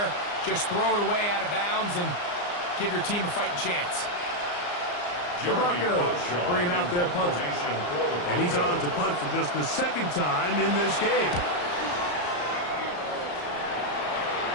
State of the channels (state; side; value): late; right; 34 ms